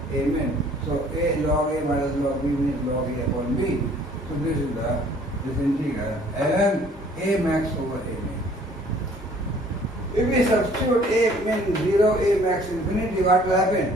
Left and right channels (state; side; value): normal; both; correlation 0.56